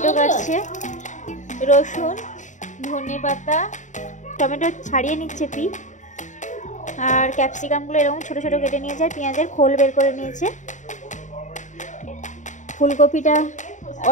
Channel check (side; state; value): right; late; 0.36 ms